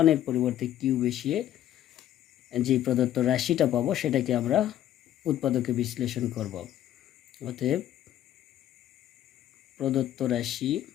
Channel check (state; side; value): quieter; right; 12.1 dB